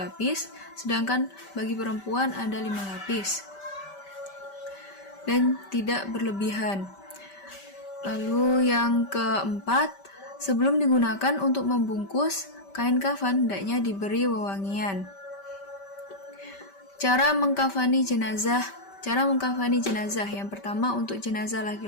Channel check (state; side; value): late; right; 5.1 ms